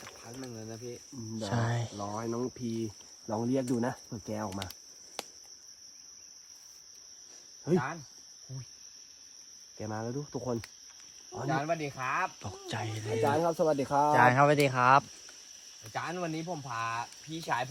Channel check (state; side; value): identical; both; correlation 1.00